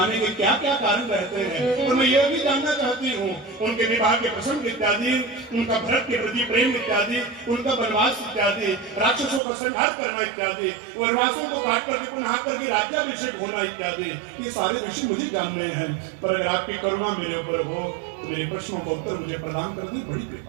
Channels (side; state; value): left; drops out; at 9.4 s